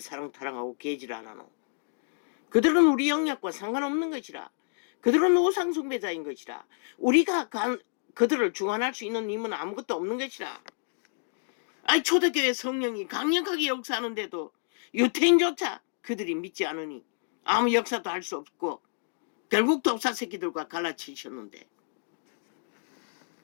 사랑 타령하고 개질 안 하노? 그들은 우리 영역과 상관없는 것이라. 그들은 우상 숭배자인 것이라. 우리가 그들을 중환할 수 있는 힘은 아무것도 없는 것이라. 아니 초대교회 성령이 강력하게 역사하는데도 유태인조차 그들이 믿지 않으니 아무 역사도 할 수 없고 결국 독사 새끼들과 갈라치셨는데.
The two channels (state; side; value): silent; right; digital silence